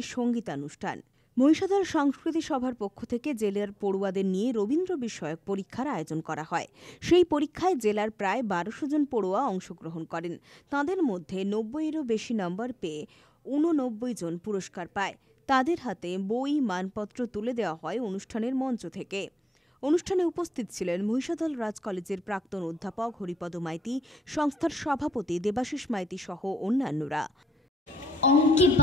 সঙ্গীতানুষ্ঠান। মহিষাদল সংস্কৃতি সভার পক্ষ থেকে জেলার পড়ুয়াদের নিয়ে রবীন্দ্র বিষয়ক পরীক্ষার আয়োজন করা হয়। সেই পরীক্ষায় জেলার প্রায় ১২০০ জন পড়ুয়া অংশগ্রহণ করেন। তাঁদের মধ্যে ৯০-এরও বেশি নম্বর পেয়ে ৮৯ জন পুরস্কার পায়। তাদের হাতে বই, মানপত্র তুলে দেওয়া হয় অনুষ্ঠানের মঞ্চ থেকে। অনুষ্ঠানে উপস্থিত ছিলেন মহিষাদল রাজ কলেজের প্রাক্তন অধ্যাপক হরিপদ মাইতি, সংস্থার সভাপতি দেবাশিস মাইতি সহ অন্যান্যরা। অঙ্কে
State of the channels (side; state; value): both; normal; correlation 0.86